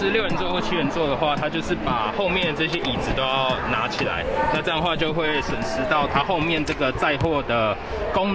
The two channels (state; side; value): identical; both; correlation 1.00